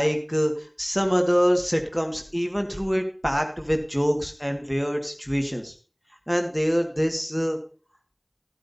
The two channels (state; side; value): identical; both; correlation 1.00